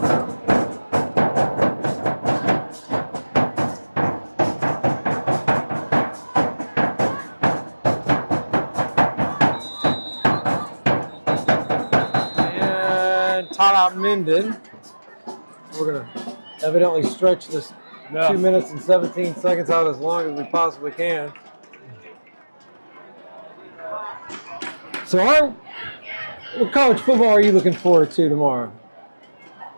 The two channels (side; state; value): both; inverted; correlation -1.00